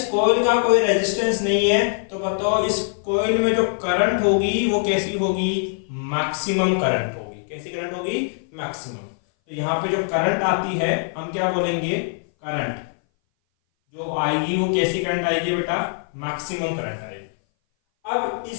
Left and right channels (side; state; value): right; silent; 59 dB below the other